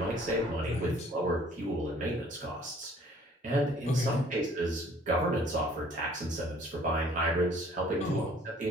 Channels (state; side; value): normal; both; correlation 0.55